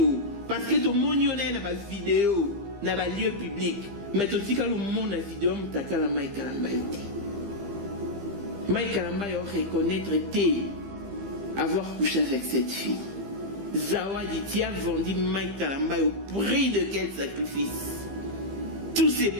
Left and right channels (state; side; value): late; left; 15 ms